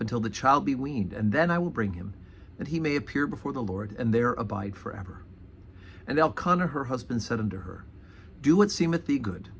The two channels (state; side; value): identical; both; correlation 1.00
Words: until the child be weaned, and then I will bring him, that he may appear before the Lord, and there abide forever. And Elkanah her husband said unto her, Do what seemeth thee good.